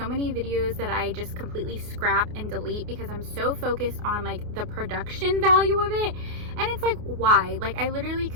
many videos that I just completely scrap and delete because I'm so focused on like the production value of it. And it's like, why? Like, I literally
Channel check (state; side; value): late; left; 28 ms